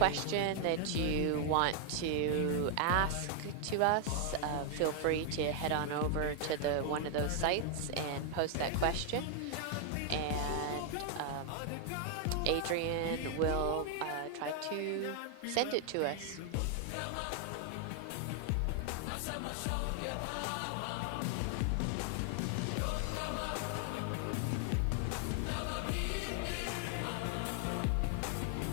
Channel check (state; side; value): different; both; correlation 0.00